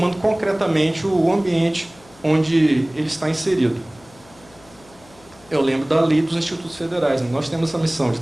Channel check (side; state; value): left; noise; hum, 26 dB below the sound